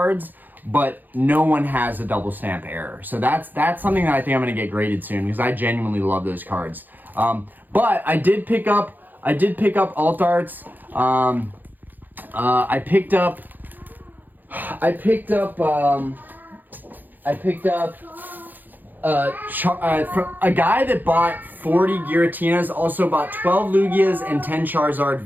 but no one has a double stamp error. So that's something that I think I'm gonna get graded soon because I genuinely love those cards. But I did pick up alt arts. I picked up a guy that bought 40 Giratinas also bought 12 Lugias and 10 Charizard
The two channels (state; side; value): late; left; 0.086 ms